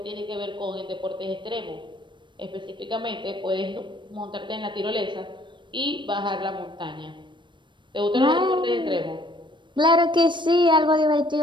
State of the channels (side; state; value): left; late; 0.23 ms